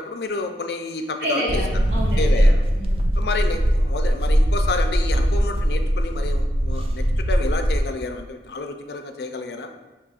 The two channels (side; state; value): both; normal; correlation 0.84